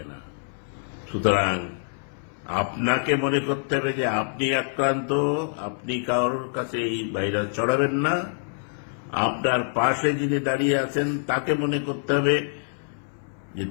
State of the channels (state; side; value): silent; right; 61 dB below the other